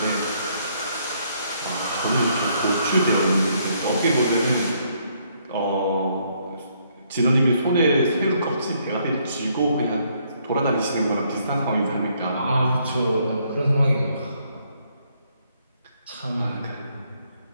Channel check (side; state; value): both; inverted; correlation -0.70